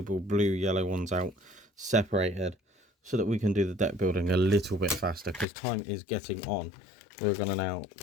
blue yellow ones out separated so that we can do the deck building a little bit faster because time is getting on. We're going to now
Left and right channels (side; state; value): right; drops out; at 5.5 s